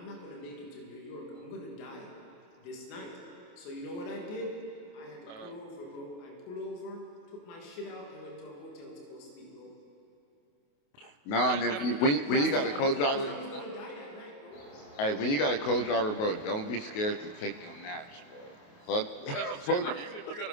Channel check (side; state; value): right; late; 28 ms